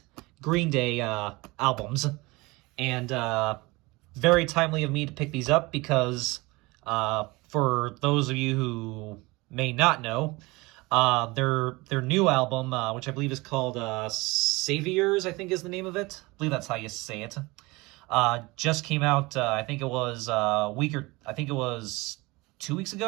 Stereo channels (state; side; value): quieter; left; 23.1 dB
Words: Green Day albums, and very timely of me to pick these up because for those of you who may not know, their new album, which I believe is called Saviors, I think is the name of it. I believe that's how you say it. Just came out. I think it was I think it was 2 weeks ago.